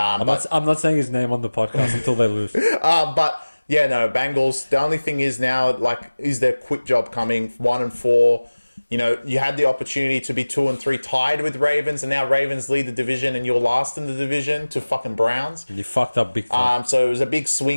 not saying his name on the podcast until they lose. But yeah, no, Bengals. The only thing is now, like, is their quick job coming? 1-4. You know, you had the opportunity to be 2-3 tied with Ravens, and now Ravens lead the division, and you're last in the division to fucking Browns. You fucked up big time. So it was a big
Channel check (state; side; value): inverted; both; correlation -1.00